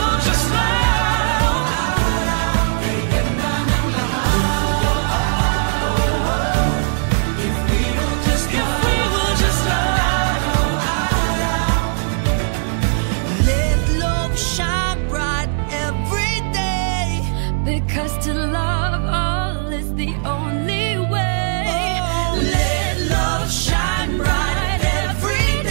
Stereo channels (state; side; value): silent; left; 67 dB below the other